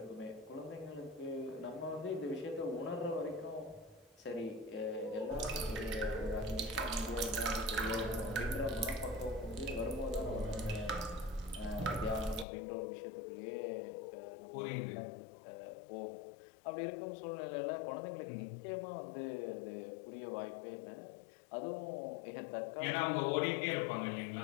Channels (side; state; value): right; drops out; at 12.5 s